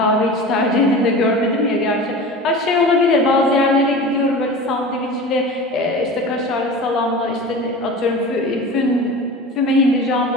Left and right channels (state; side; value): normal; both; correlation 0.34